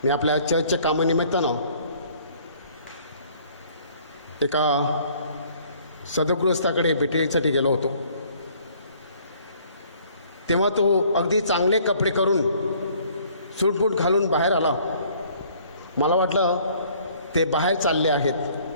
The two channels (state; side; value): inverted; both; correlation -0.58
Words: मी आपल्या चर्चच्या कामानिमित्तानं एका सदगृहस्थाकडे भेटीसाठी गेलो होतो. तेव्हा तो अगदी चांगले कपडे करून सूटबूट घालून बाहेर आला. मला वाटलं ते बाहेर चालले आहेत.